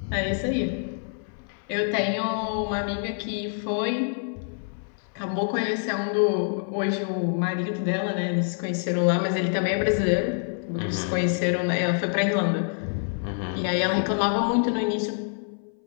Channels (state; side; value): silent; right; 61 dB below the other